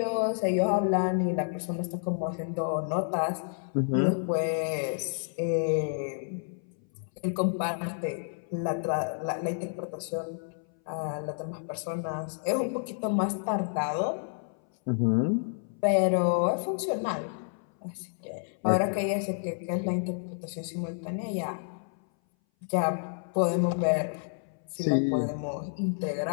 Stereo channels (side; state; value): right; silent; 58 dB below the other